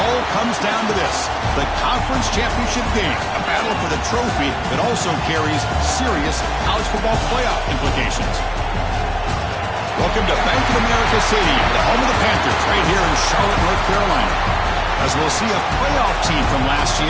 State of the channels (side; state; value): both; identical; correlation 1.00